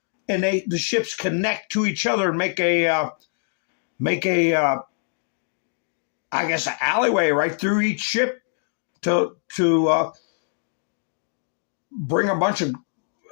and the ships connect to each other and make a I guess an alleyway right through each ship to bring a bunch of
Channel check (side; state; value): right; silent; digital silence